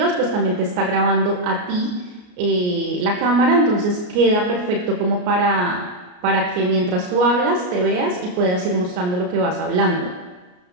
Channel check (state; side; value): late; left; 33 ms